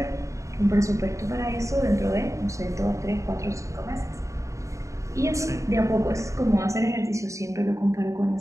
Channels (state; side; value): late; left; 0.15 ms